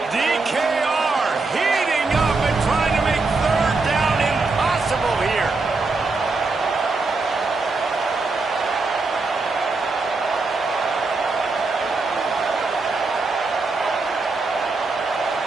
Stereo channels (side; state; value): left; quieter; 3.8 dB